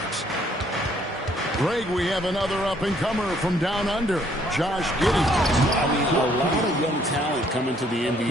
Greg, we have another up-and-comer from down under, Josh Giddey. I mean, a lot of young talent coming to the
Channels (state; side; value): normal; both; correlation 0.65